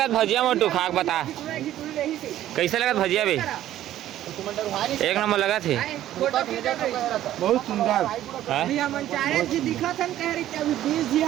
भजिया मोटू खाक बता कैसे लगा भजिया बे एक नंबर लगा थे। बहुत सुंदर। हाँ? अभी हम चाहे जी दिखत हन कह रही कि अभी 20 जी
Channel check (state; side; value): quieter; left; 12.9 dB